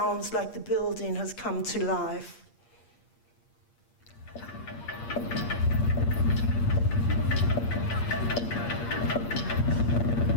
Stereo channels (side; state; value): right; late; 8.6 ms